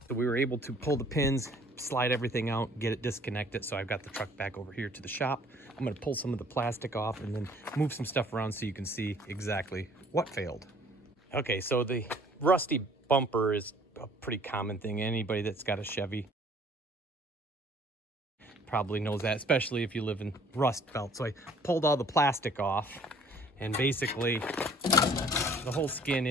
So we were able to pull the pins, slide everything out, get it disconnected. So I've got the truck back over here to the shop. I'm gonna pull some of the plastic off and then move some stuff around so you can see exactly what failed. Okay, so the rusty bumper is a pretty common thing. Anybody that's got a Chevy probably knows that, especially if you live in Rust Belt. So I pulled all the plastic off, and basically the whole skin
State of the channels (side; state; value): both; normal; correlation 0.56